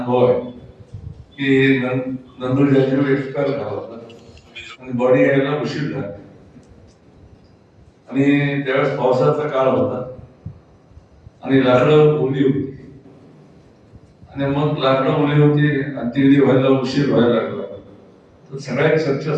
आहे की नंदूर जाजीव एक्सपायर झाला होता आणि बॉडी यायला उशीर झाला आणि त्यावेळेस पावसाचा काळ होता आणि लाकडं ओली होती आणि मग लाकडं ओली होती आणि ती व्हायला उशीर व्हायला लागला. तर सगळ्यात चर्चा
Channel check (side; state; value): both; identical; correlation 1.00